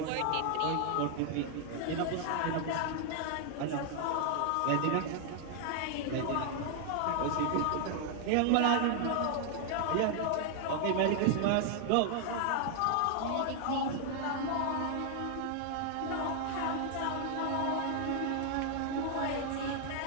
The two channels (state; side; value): different; both; correlation 0.00